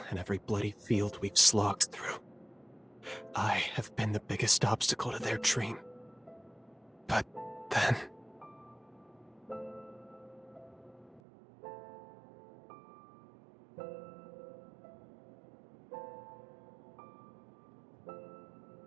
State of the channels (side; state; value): left; drops out; at 11.2 s